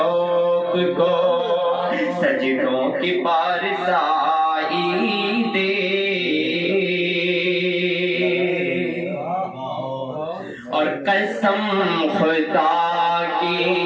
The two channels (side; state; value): both; identical; correlation 1.00